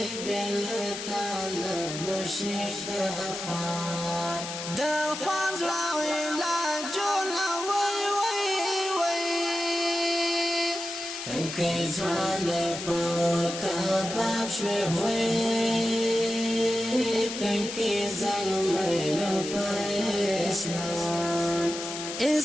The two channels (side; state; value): left; noise; hiss, 7 dB below the sound